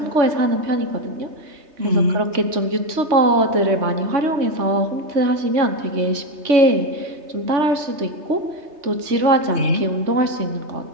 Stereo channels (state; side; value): late; left; 3.3 ms